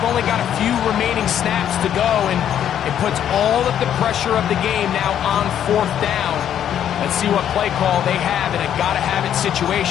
only got a few remaining snaps to go, and it puts all of the pressure of the game now on fourth down. Let's see what play call they have in a gotta-have-it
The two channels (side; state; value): right; quieter; 9.9 dB